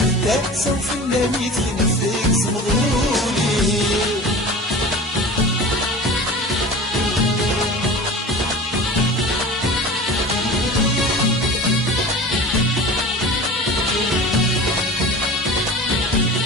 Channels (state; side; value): normal; both; correlation 0.36